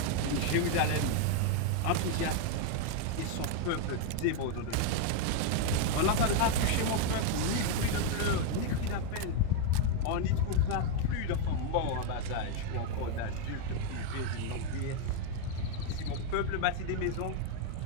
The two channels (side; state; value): both; different; correlation 0.01